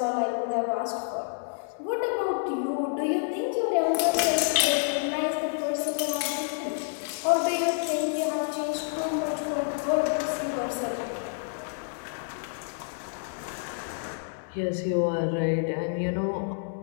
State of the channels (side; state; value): right; silent; digital silence